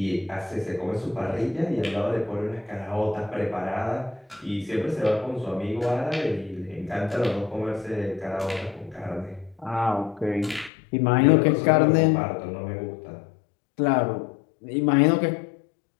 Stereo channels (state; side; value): drops out; right; at 10.7 s